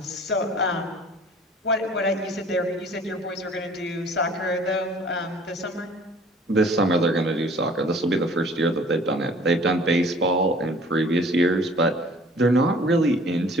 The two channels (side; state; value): both; normal; correlation 0.51